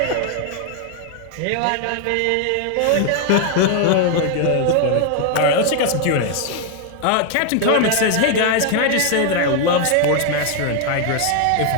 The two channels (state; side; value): different; both; correlation 0.00